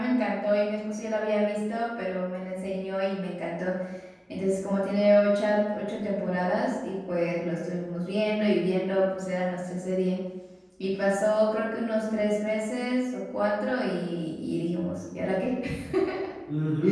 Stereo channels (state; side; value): identical; both; correlation 1.00